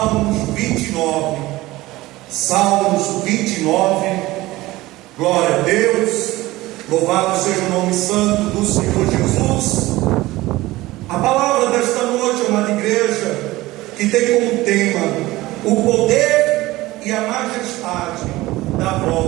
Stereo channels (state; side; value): quieter; left; 18.5 dB